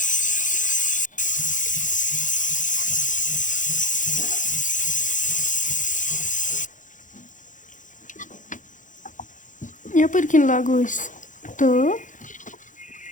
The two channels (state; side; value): late; right; 0.37 ms